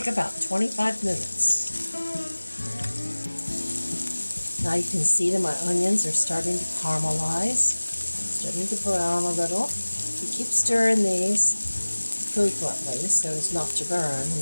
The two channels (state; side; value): inverted; both; correlation -1.00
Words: about 25 minutes. Now you can see that my onions are starting to caramelize, starting to brown a little. You keep stirring these frequently so as not to burn, and